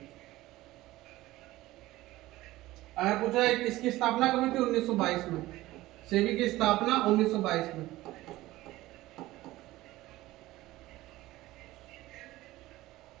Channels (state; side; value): quieter; left; 17.4 dB